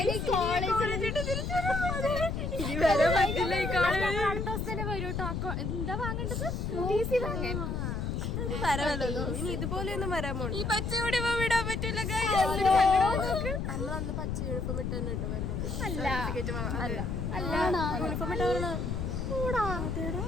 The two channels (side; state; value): left; noise; rumble, 2 dB below the sound